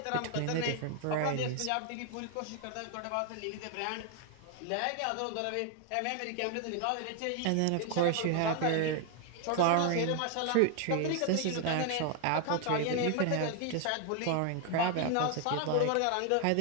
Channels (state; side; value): different; both; correlation 0.01